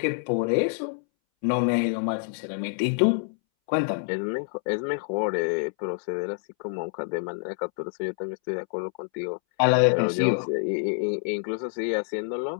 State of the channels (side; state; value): right; silent; 60 dB below the other